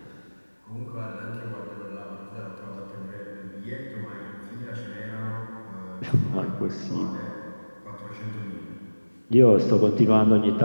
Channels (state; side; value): inverted; both; correlation -1.00